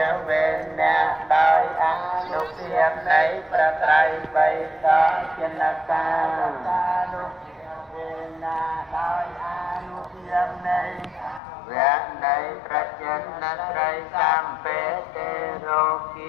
វេអ្នកដោយអនុភាពនៃព្រះត្រៃបិដកចិនកានុភាវេអ្នកដោយអនុភាពនៃវៈនៃប្រចិនត្រីសម្បេទេរោគ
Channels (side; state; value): right; drops out; at 11.4 s